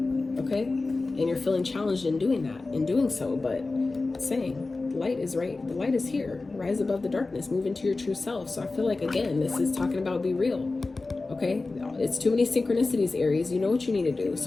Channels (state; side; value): quieter; right; 3.5 dB